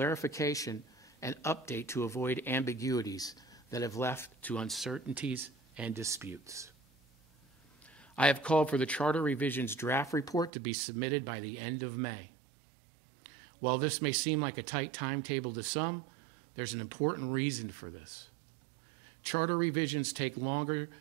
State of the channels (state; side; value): drops out; left; at 10.5 s